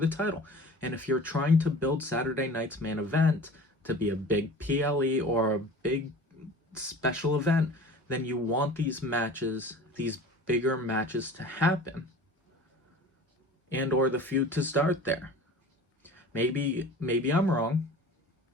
title. And if you're trying to build Saturday night's main event to be a big PLE or a big special event, then you want these matches, these bigger matches to happen, and or the feud to start there. Maybe I'm wrong,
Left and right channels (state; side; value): normal; both; correlation 0.41